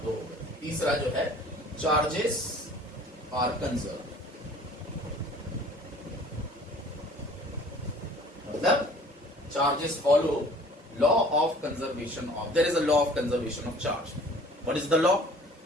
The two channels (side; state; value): both; normal; correlation 0.50